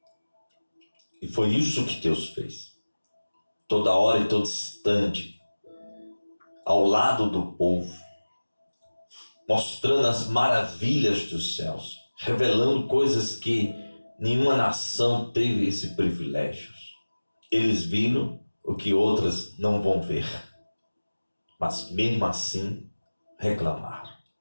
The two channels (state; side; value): inverted; both; correlation -1.00